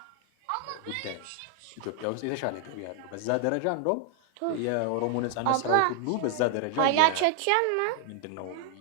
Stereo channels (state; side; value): different; both; correlation 0.00